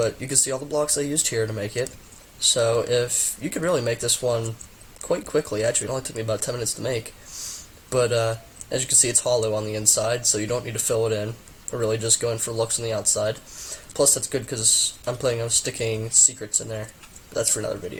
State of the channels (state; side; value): identical; both; correlation 1.00